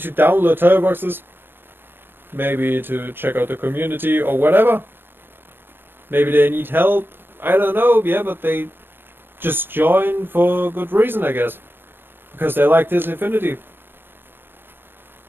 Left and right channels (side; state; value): left; late; 0.098 ms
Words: download toy boxes, maybe to check out the community or whatever. Maybe they need help. I don't know. Yeah, but they just join for good reason, I guess, because they like this Infinity.